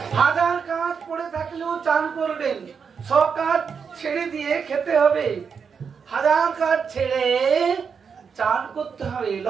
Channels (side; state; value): left; quieter; 6.2 dB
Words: 1000 কাজ পড়ে থাকলেও চান করবেন, 100 কাজ ছেড়ে দিয়ে খেতে হবে, 1000 কাজ ছেড়ে চান করতে হবে।